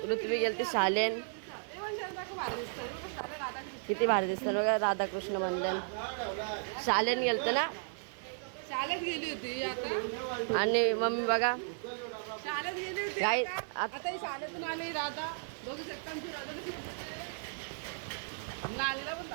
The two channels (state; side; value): silent; left; 55 dB below the other